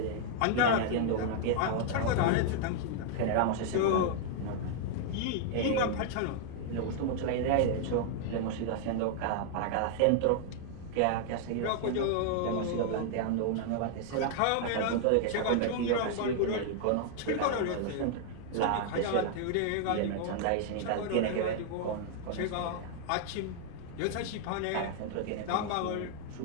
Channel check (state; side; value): different; both; correlation -0.01